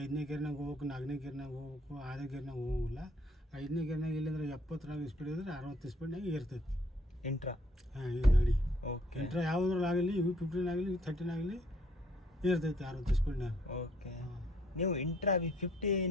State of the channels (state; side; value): normal; both; correlation 0.64